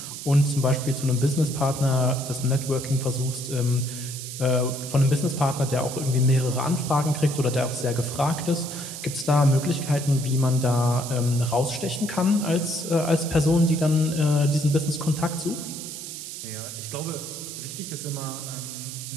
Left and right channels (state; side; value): noise; right; hiss, 9 dB below the sound